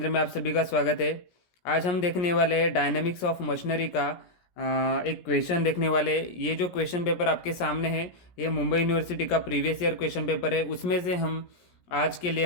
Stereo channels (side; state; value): right; late; 17 ms